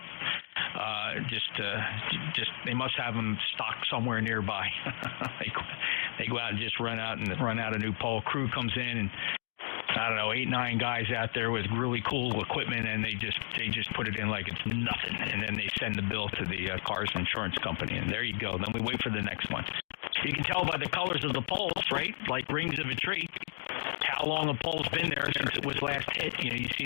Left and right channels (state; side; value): silent; right; digital silence